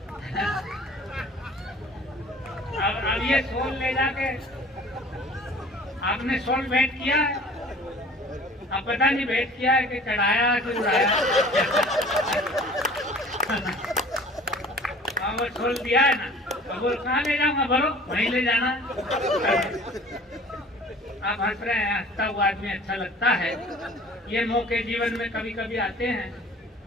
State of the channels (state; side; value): normal; both; correlation 0.47